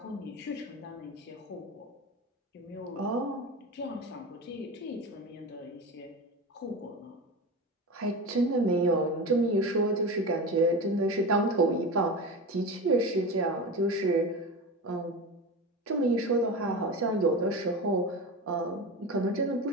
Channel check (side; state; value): both; normal; correlation 0.26